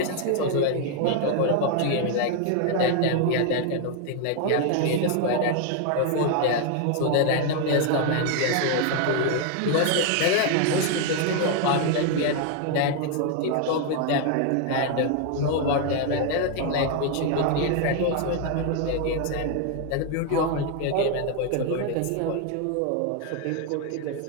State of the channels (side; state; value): both; different; correlation 0.01